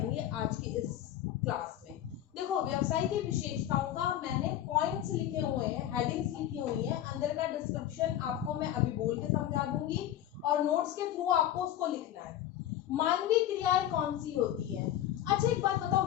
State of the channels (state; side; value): quieter; right; 12.0 dB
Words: आज की इस क्लास में। देखो, व्यवसाय की विशेषताओं का मैंने पॉइंट्स लिखे हुए हैं, हेडिंग्स लिखी हुई है, अंदर का डिस्क्रिप्शन आपको मैं अभी बोल के समझा दूंगी और नोट्स के थ्रू आपको उसको लिखना है। मानवीय क्रियाएं कौन सी होती है? अच्छा, एक बात बताओ,